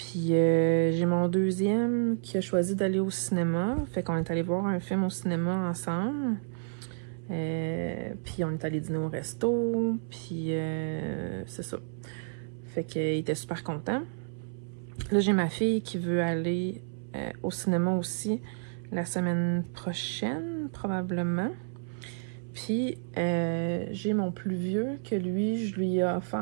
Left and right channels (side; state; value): left; silent; 58 dB below the other